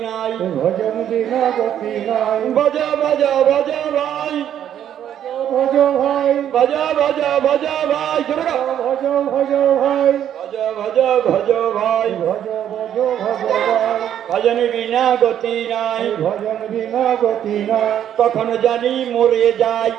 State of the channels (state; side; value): quieter; left; 10.2 dB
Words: নাই। ভজন বিনা গতি নাই ভজ ভজ ভজ ভাই, ভজ ভাই ভজ ভজ ভজ ভাই। জোরে গাও। ভজ ভজ ভাই ভজ ভজ ভজ ভাই, ভজ ভজ ভজ ভাই ভজন বিনা গতি নাই। ভজন বিনা গতি নাই কখন জানি মরে যাই,